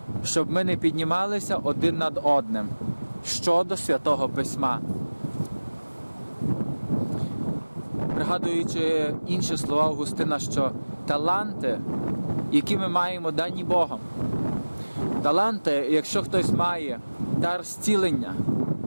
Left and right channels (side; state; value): both; inverted; correlation -1.00